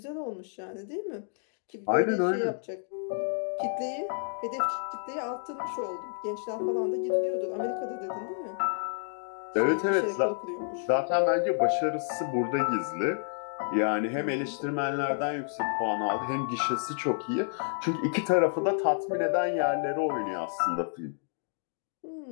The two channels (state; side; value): silent; right; 58 dB below the other